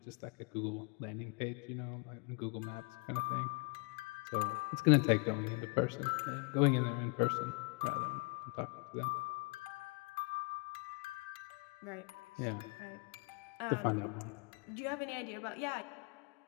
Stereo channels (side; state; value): right; quieter; 29.1 dB